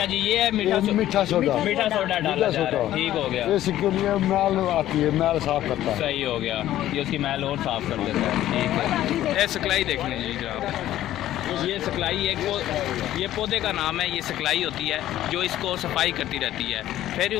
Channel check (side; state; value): right; quieter; 13.3 dB